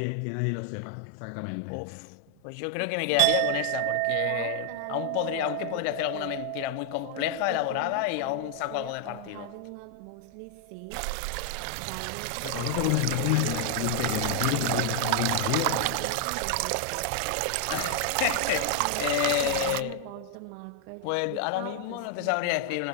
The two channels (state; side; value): different; both; correlation 0.00